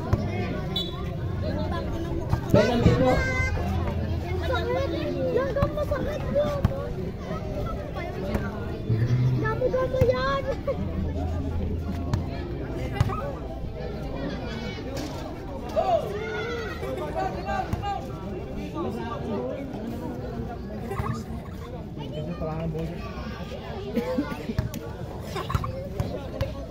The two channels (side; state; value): both; identical; correlation 1.00